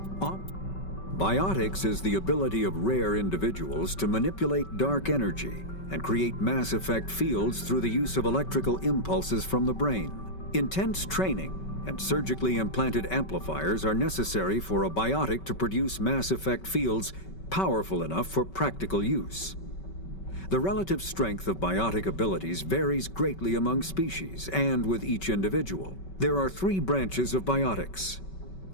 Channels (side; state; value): right; late; 5.3 ms